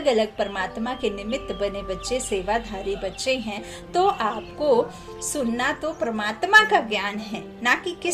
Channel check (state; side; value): identical; both; correlation 1.00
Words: अलग परमात्मा के निमित्त बने बच्चे, सेवाधारी बच्चे हैं। तो आपको सुनना तो परमात्मा का ज्ञान है, ना कि